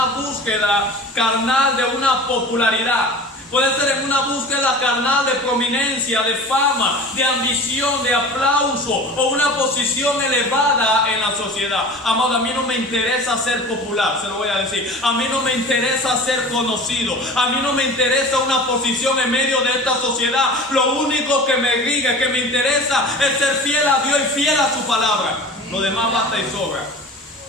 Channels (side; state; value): both; normal; correlation 0.37